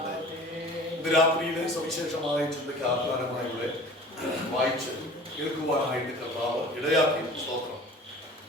ഇന്ന് രാത്രിയിലെ സവിശേഷമായ ചിന്തയ്ക്ക് ആധാരമായി ഇവിടെ വായിച്ച് കേൾക്കുവാനായിട്ട് കർത്താവ് ഇടയാക്കി. സ്തോത്രം.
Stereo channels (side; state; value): both; normal; correlation 0.43